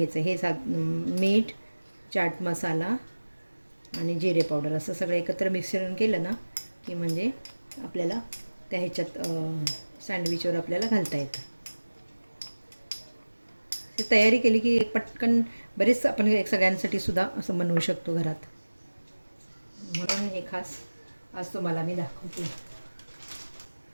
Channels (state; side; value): inverted; both; correlation -1.00